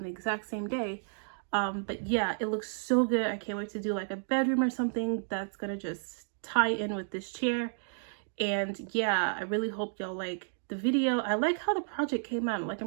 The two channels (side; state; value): left; silent; digital silence